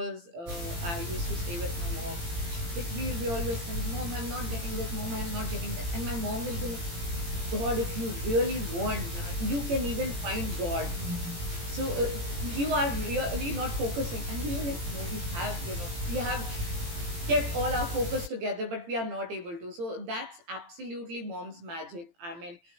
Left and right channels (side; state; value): left; late; 18 ms